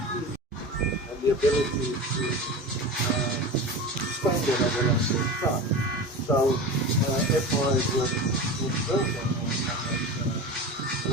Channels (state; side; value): normal; both; correlation 0.29